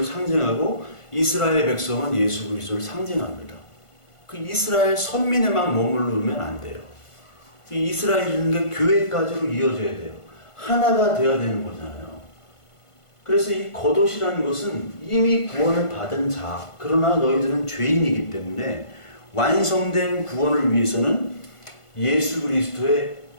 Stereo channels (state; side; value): late; right; 1.5 ms